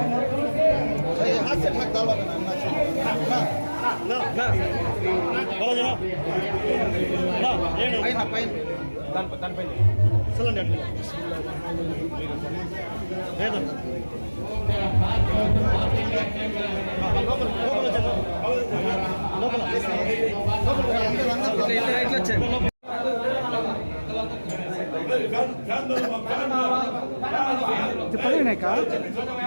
हाथ से ढक डालो ना ना बोलो जरा ना ये ना पैन पैन तन पैन चलन डट दे दो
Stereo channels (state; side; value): inverted; both; correlation -1.00